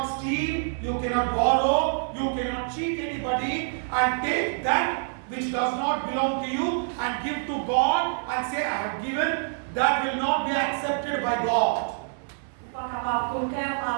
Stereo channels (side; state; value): left; silent; digital silence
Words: steal, you cannot borrow, you cannot cheat anybody and take that which does not belong to you and give to God and say, I have given. That will not be accepted by God. Pas qu'avoir coquin,